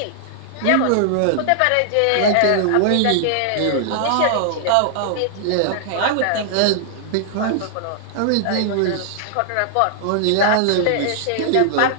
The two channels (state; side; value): different; both; correlation -0.01